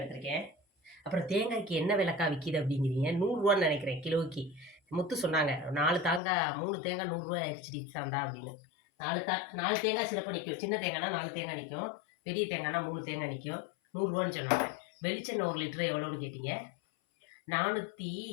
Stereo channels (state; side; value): drops out; right; at 6.2 s